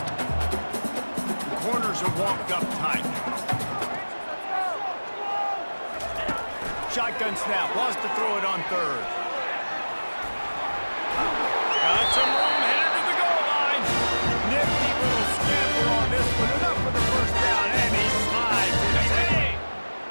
The corners are walked up tight. Shotgun snap, wants to throw it on third. Got some room, headed to the goal line. Nifty little scamper on this one, enough for the first down, and he slides inside.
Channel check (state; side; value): inverted; both; correlation -1.00